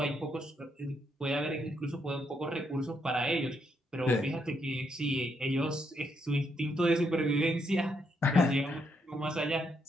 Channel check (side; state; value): both; normal; correlation 0.77